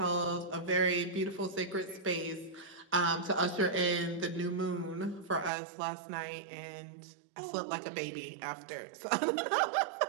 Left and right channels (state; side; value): drops out; left; at 5.5 s